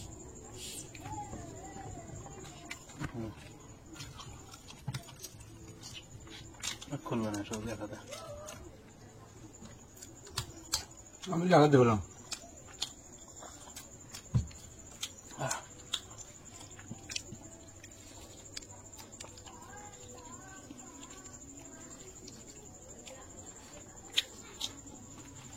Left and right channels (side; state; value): both; identical; correlation 1.00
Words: খুলবে না, সব দেখাতে আমি লাগাতে বললাম।